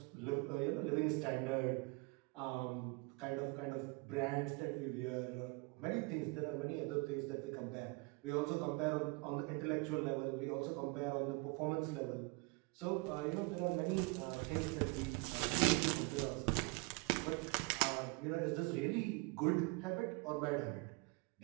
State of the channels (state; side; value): quieter; left; 28.4 dB